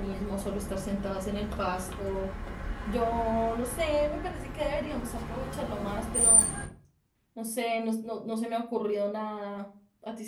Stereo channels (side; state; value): both; identical; correlation 1.00